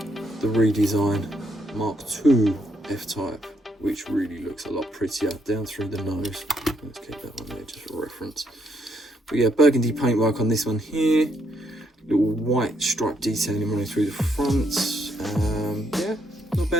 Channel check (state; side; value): normal; both; correlation 0.74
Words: the redesign Mark II F-Type, which really looks a lot prettier down through the nose. Let's keep that one there just for reference. But yeah, burgundy paintwork on this one here. Little white stripe detailing running through the front. Yeah, not